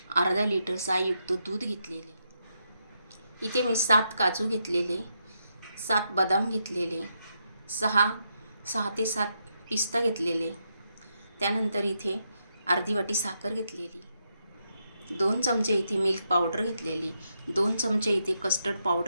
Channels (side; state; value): both; inverted; correlation -0.82